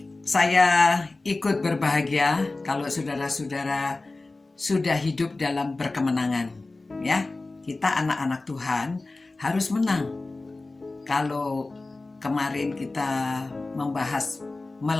saya ikut berbahagia kalau saudara-saudara sudah hidup dalam berkemenangan. Ya, kita anak-anak Tuhan harus menang. Kalau kemarin kita membahas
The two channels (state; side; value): quieter; right; 3.3 dB